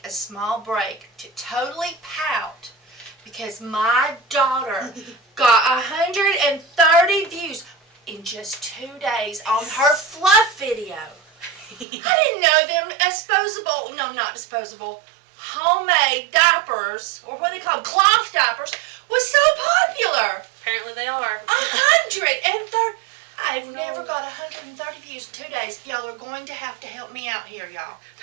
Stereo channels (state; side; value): drops out; left; at 11.9 s